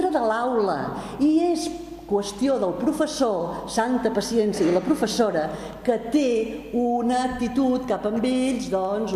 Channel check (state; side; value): identical; both; correlation 1.00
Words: de l'aula i és qüestió del professor, santa paciència, i la professora, que té una actitud cap amb ells, que